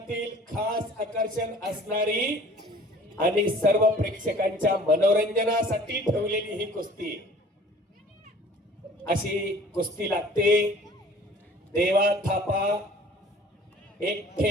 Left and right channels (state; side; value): normal; both; correlation 0.49